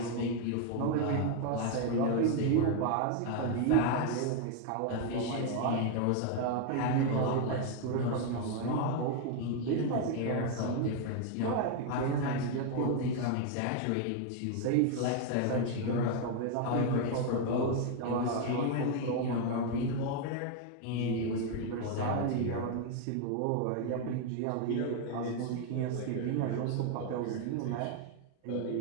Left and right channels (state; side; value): different; both; correlation 0.01